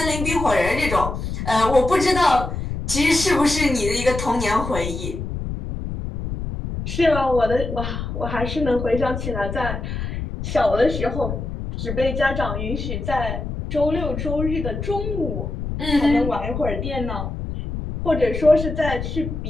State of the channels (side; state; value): left; noise; rumble, 5 dB below the sound